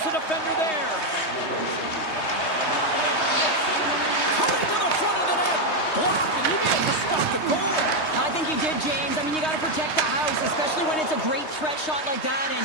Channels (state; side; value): late; right; 3.2 ms